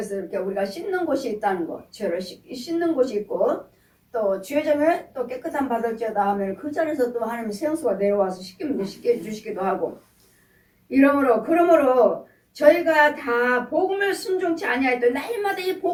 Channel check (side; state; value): both; identical; correlation 1.00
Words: 이렇게 우리가 씻는 곳이 있다는 거. 죄를 씻는 곳이 있고 또 죄점에 또 깨끗한 받을지어다 하면 그 자리에서 또 하나님의 생수가 내려와서 씻게 해주시기도 하고. 그러므로 저희가 다 복음을 순종치 아니하였던 날마다 이